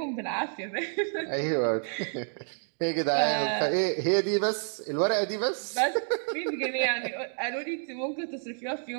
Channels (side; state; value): left; silent; 57 dB below the other